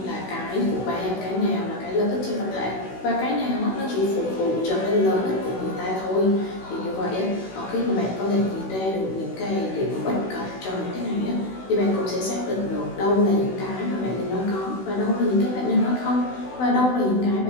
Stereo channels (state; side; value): late; right; 16 ms